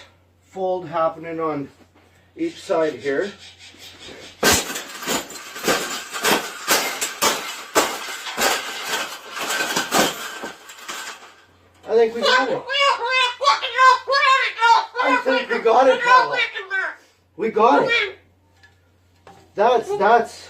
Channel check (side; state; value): both; identical; correlation 1.00